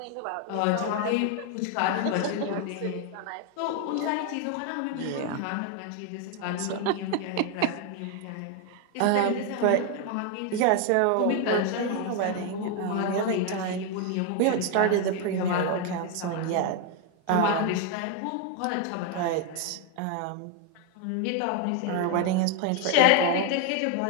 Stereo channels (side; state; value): both; different; correlation 0.01